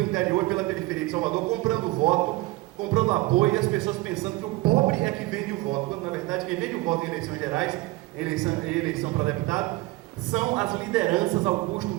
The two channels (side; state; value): left; quieter; 20.3 dB